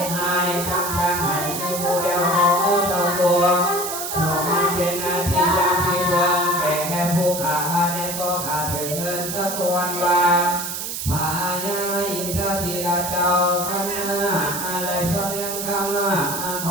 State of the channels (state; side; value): noise; right; hiss, 5 dB below the sound